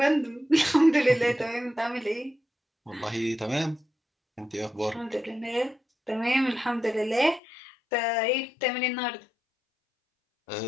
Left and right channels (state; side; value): drops out; right; at 7.4 s